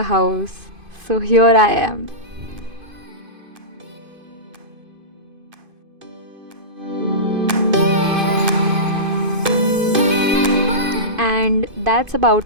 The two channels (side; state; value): left; late; 2.5 ms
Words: house. So here I am. And that's